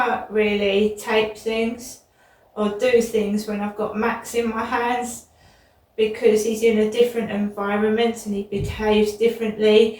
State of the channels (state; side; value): identical; both; correlation 1.00